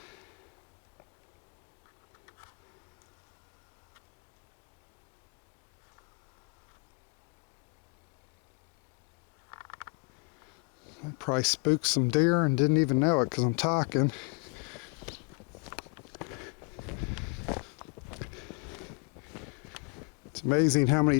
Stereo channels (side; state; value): right; quieter; 33.6 dB